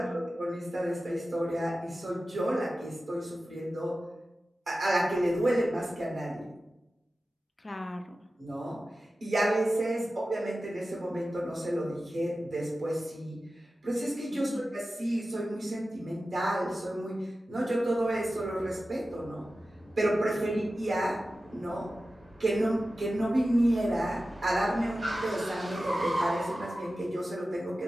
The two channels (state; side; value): normal; both; correlation 0.94